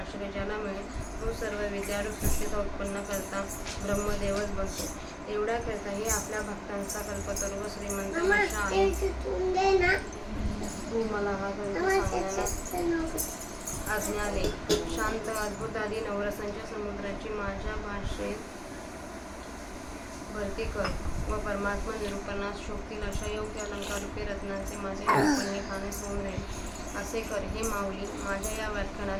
ज्याला मिळेल तो सर्व विद्यारूप सृष्टीचा उत्पन्न करता ब्रह्मदेवच बनतो. एवढ्या करता हे आपल्या भक्तांचा कल्पतरू व श्रीमंत आशा आहे. तू मला हा ग्रंथ सांगण्याला आज्ञा दे. शांत अद्भुत आदी नवरसांच्या समुद्राची माझ्या भाषेत भरती कर व परमात्मा निरूपणास शोभतील अशा योग्य अलंकारूपी रत्नांचे माझे निरूपण हे खाणेस होऊन राहील असे कर. हे माऊली, माझ्या या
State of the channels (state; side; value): identical; both; correlation 1.00